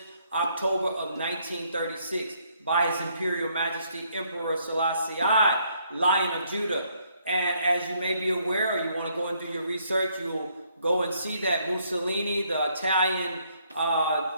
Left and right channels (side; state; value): both; inverted; correlation -0.69